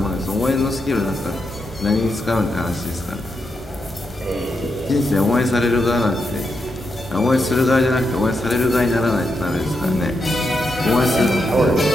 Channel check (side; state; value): both; normal; correlation 0.84